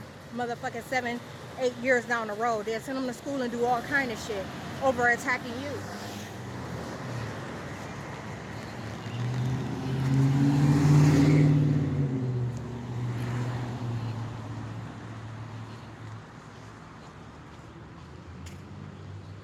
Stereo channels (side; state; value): both; identical; correlation 1.00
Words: motherfucking 7-8 years down the road. They'll send them to school and do all kind of shit over attacking you.